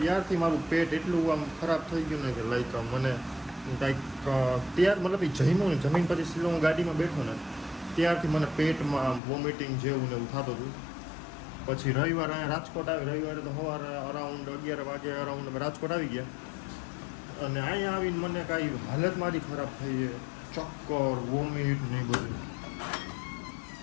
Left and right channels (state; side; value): drops out; right; at 9.2 s